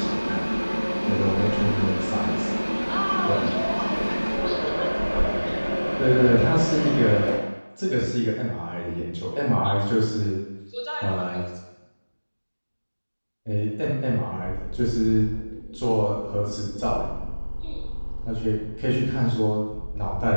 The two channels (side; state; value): both; inverted; correlation -1.00